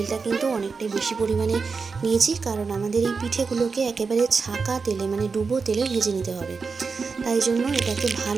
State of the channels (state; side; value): quieter; left; 4.9 dB